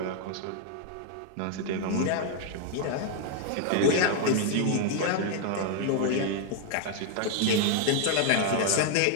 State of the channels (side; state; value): both; different; correlation 0.00